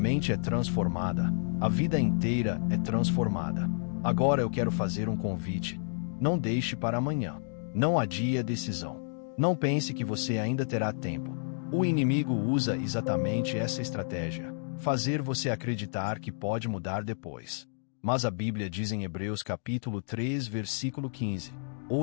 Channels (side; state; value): right; silent; digital silence